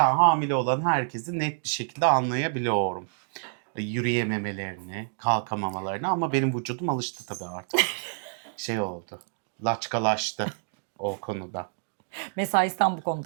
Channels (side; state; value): left; silent; digital silence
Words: hamile olan herkesi net bir şekilde anlayabiliyorum. Yürüyememelerini, kalkamamalarını, ama benim vücudum alıştı tabii artık. Şey oldu. Laçkalaştı o konuda. Mesaisten bu